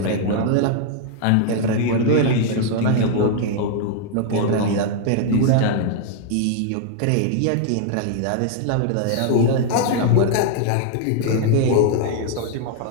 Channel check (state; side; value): different; both; correlation 0.00